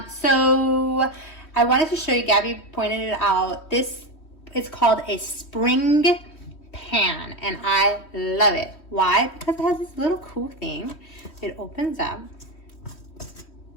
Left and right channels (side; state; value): right; late; 3.1 ms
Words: So I wanted to show you, Gabby pointed it out, this is called a spring pan and I love it. Why? Because it has this little cool thing. It opens up.